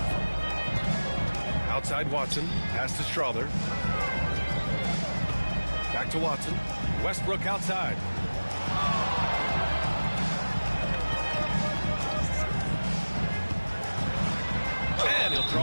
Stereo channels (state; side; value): inverted; both; correlation -1.00